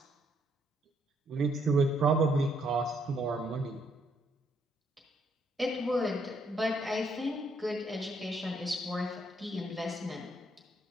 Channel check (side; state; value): both; normal; correlation 0.72